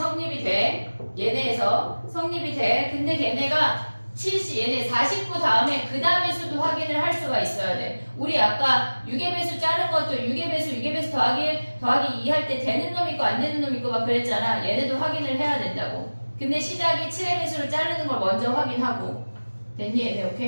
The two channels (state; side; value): inverted; both; correlation -1.00